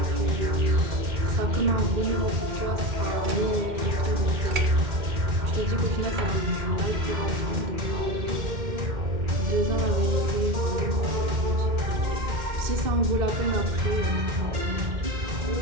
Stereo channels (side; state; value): left; late; 2.1 ms